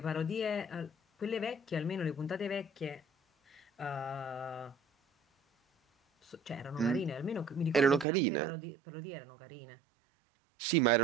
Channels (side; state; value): left; drops out; at 8.1 s